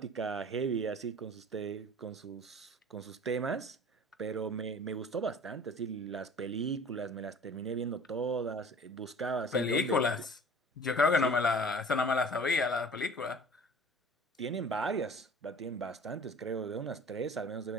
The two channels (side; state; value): both; normal; correlation 0.45